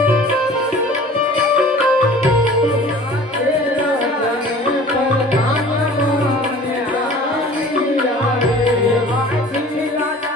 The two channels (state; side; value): normal; both; correlation 0.45